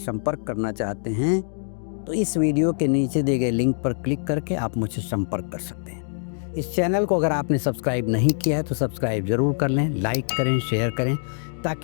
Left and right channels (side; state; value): right; silent; 62 dB below the other